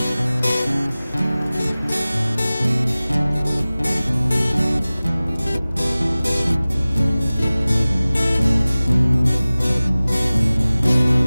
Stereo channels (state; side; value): inverted; both; correlation -0.98